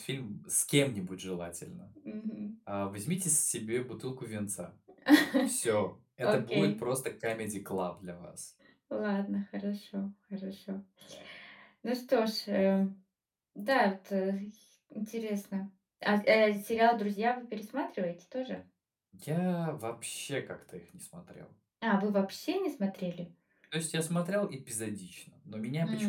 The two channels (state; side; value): identical; both; correlation 1.00